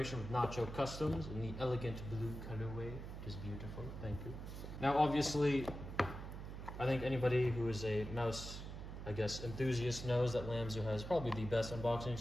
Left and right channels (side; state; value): right; noise; hum, 8 dB below the sound